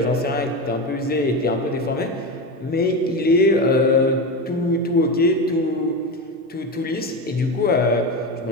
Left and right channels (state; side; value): normal; both; correlation 0.19